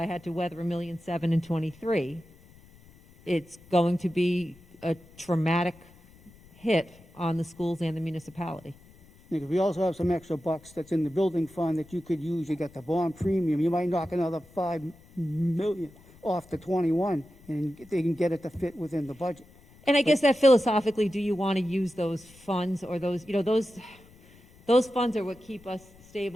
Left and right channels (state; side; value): noise; left; rumble, 25 dB below the sound